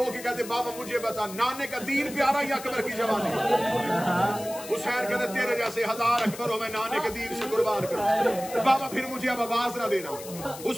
के कहते बाबा मुझे बता नाने का दीन प्यारा या अकबर की जवानी? हुसैन कहते तेरे जैसे 1000 अकबर हो मैं नाने के दीन से कुर्बान करूं। बाबा फिर मुझे अब आवाज ना देना।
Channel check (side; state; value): left; noise; hiss, 13 dB below the sound